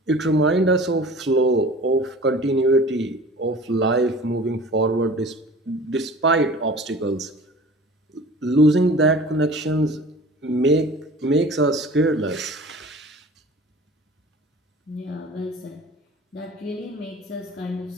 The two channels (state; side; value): normal; both; correlation 0.42